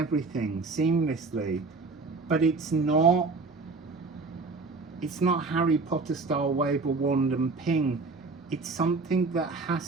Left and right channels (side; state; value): left; quieter; 3.9 dB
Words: seamlessly. But it's not Harry Potter style wave a wand and ping. It's something that